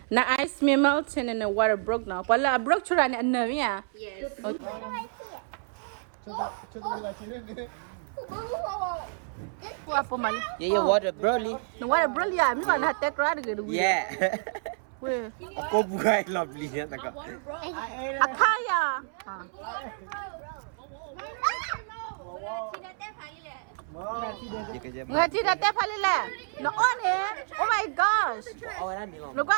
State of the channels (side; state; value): left; silent; 59 dB below the other